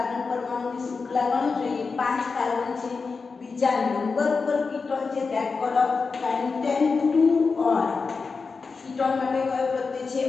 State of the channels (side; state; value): right; quieter; 4.7 dB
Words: परमाणुनी श्रृंखला गणो જોઈએ 5 कार्बन છે બીજા નંબર પર કીટોન છે that call of pentane 2 on ketone માટે કયો પ્રત્યય છે